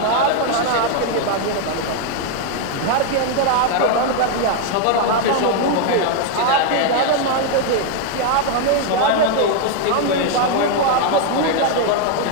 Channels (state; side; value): different; both; correlation 0.00